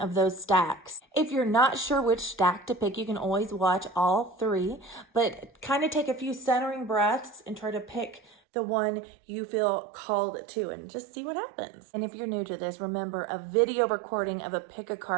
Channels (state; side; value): drops out; left; at 8.3 s